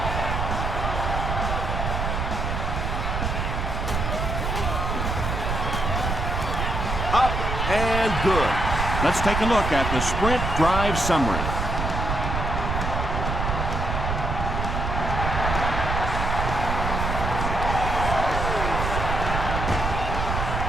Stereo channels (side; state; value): right; noise; rumble, 1 dB below the sound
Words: Up and good. Let's take a look at the Sprint drive summary.